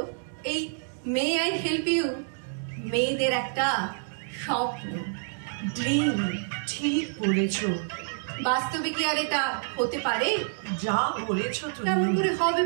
এই মে আই হেল্প ইউ মেয়েদের একটা স্বপ্ন, ড্রিম। ঠিক বলেছ। বাস্তবে কি আর এটা হতে পারে? যা বলেছ কেমন তুমি। করে হবে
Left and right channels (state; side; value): silent; left; digital silence